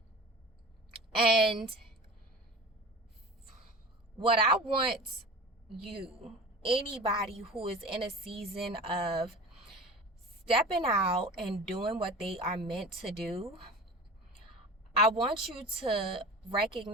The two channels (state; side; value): normal; both; correlation 0.36